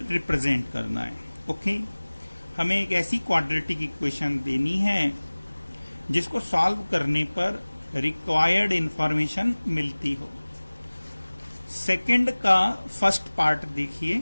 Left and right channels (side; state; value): both; inverted; correlation -1.00